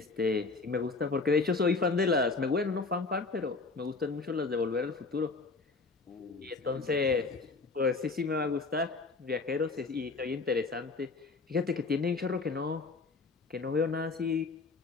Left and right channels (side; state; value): right; quieter; 4.0 dB